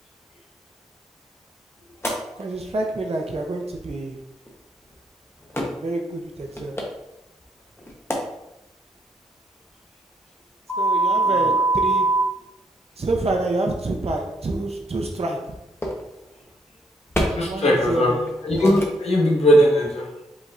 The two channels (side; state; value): both; normal; correlation 0.72